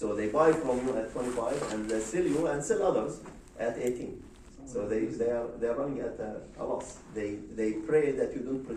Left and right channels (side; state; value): both; identical; correlation 1.00